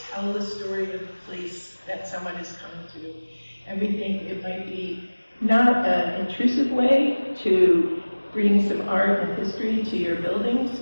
the story of the place that someone is coming to, and we think it might be not an intrusive way to bring some art and history to your buildings,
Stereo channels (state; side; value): inverted; both; correlation -1.00